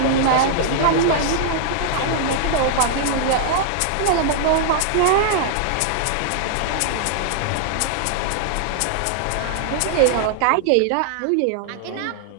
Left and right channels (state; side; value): different; both; correlation -0.01